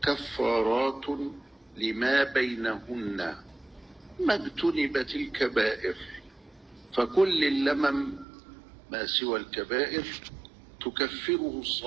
كفارات لما بينهن ما اجتنبت الكبائر، فكل اللمم ما سوى الكبائر تكفره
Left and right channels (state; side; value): drops out; left; at 8.2 s